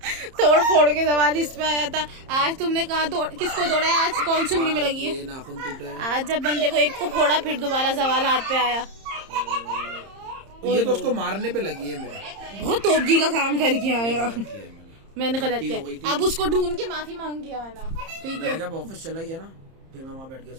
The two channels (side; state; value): left; late; 30 ms